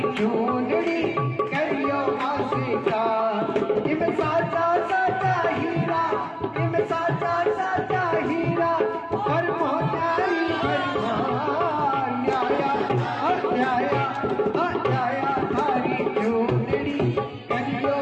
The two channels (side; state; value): both; identical; correlation 1.00